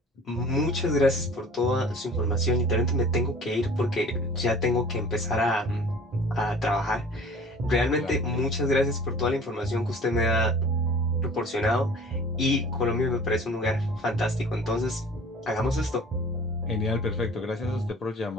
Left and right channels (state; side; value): normal; both; correlation 0.45